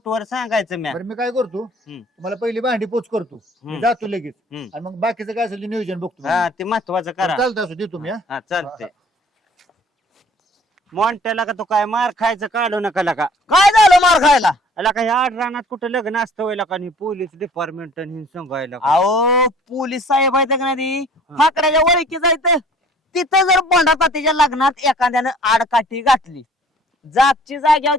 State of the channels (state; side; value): normal; both; correlation 0.52